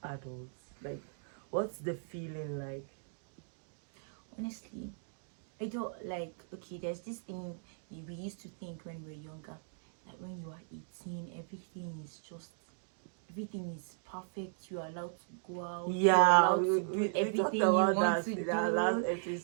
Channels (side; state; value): left; silent; digital silence